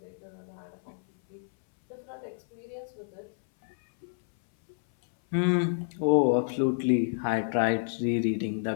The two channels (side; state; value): right; silent; 59 dB below the other